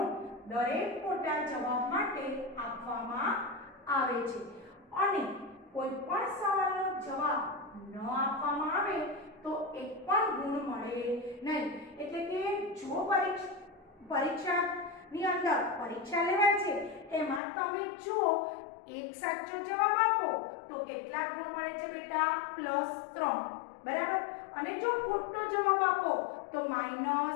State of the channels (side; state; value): right; drops out; at 17.4 s